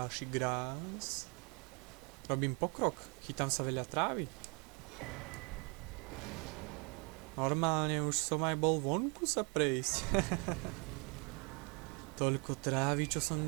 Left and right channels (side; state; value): left; quieter; 33.2 dB